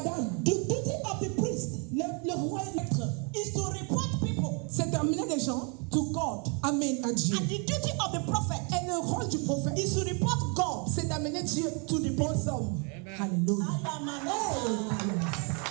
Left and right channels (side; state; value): left; quieter; 35.6 dB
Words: the duty of the priest le roi et maître, is to report people c'est d'amener les gens, to God. amen, à Dieu. And the duty of the prophet Et le rôle du prophète, is to report God. c'est d'amener Dieu to the bons hommes. Alléluia. I am an